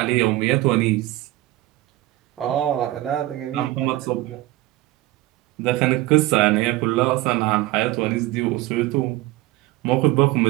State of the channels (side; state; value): left; quieter; 17.5 dB